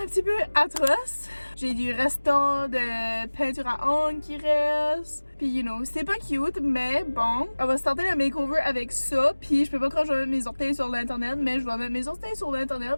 un petit peu atroces. J'ai du restant de peinture à ongles qui reste. Puis you know, c'est pas cute, mais bon, on va starter le makeover avec ça. Puis je peux pas quand je vais mettre mes orteils sur l'internet, mais je vais mettre mes orteils sur l'internet,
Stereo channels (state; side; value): inverted; both; correlation -1.00